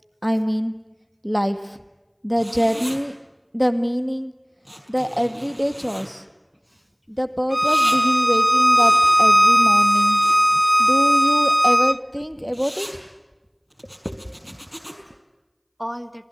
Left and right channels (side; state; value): both; identical; correlation 1.00